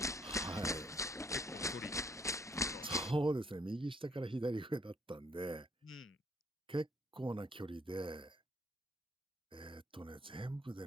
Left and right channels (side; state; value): both; normal; correlation 0.67